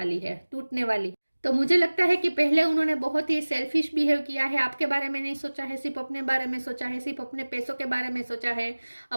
है, टूटने वाली। तो मुझे लगता है कि पहले उन्होंने बहुत ही सेल्फिश बिहेव किया है, आपके बारे में नहीं सोचा है, सिर्फ अपने बारे में सोचा है, सिर्फ अपने पैसों के बारे में सोचा है,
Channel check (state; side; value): inverted; both; correlation -1.00